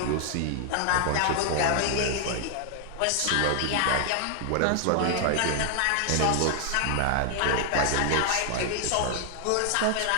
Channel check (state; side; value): different; both; correlation 0.00